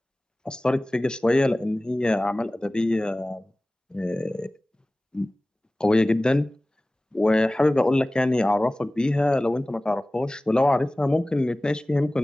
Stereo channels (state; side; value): normal; both; correlation 0.98